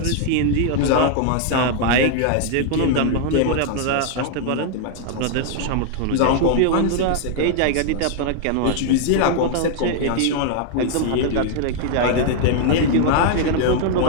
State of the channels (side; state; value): both; different; correlation 0.00